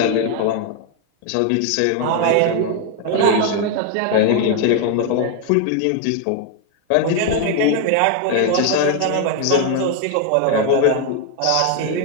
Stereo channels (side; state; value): both; different; correlation 0.00